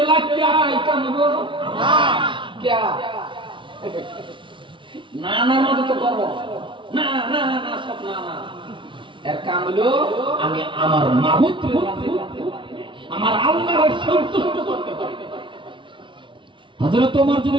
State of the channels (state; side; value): late; left; 0.24 ms